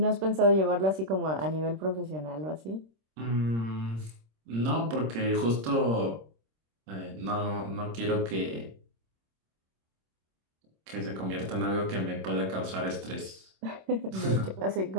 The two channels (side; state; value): left; late; 26 ms